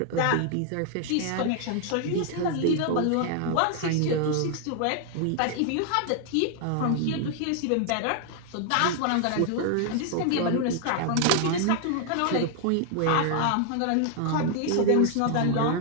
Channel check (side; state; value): both; different; correlation 0.00